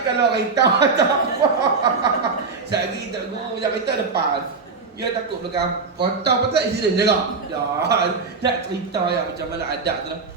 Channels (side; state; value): left; quieter; 4.6 dB